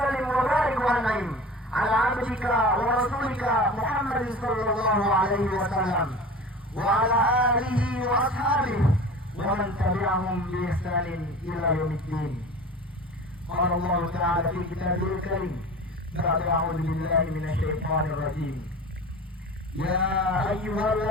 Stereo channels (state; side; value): normal; both; correlation 0.37